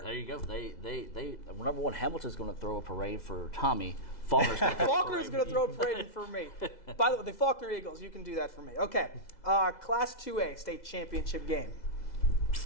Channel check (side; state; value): right; late; 2.0 ms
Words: There you go. They number one, Hamilton's going to throw a parade for Tommy. Faulkner's going to Faulkner's going to throw a parade for me. By the way, the Faulkner Eagles, you can do that for me. Okay, Class 2A state championship game.